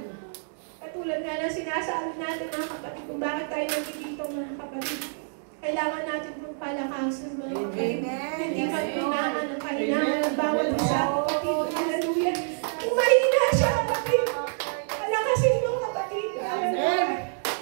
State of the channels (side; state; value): left; silent; digital silence